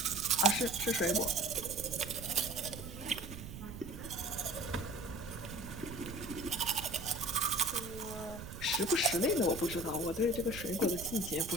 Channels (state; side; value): noise; right; rumble, 11 dB below the sound